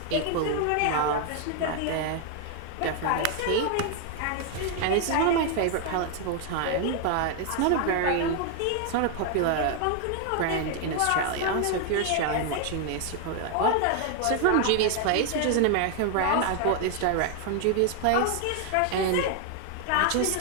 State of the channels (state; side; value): different; both; correlation 0.00